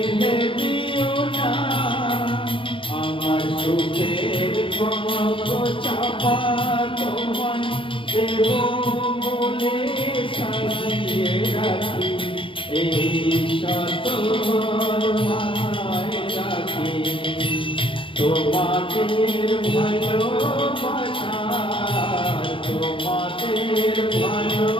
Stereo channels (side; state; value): right; late; 0.25 ms